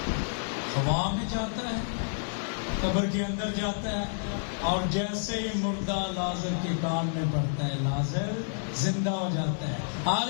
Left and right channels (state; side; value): silent; right; digital silence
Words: ہوا میں جاتا ہے، قبر کے اندر جاتا ہے، اور جیسے ہی مردہ لازر کے کان میں پڑتا ہے لازر زندہ ہو جاتا ہے۔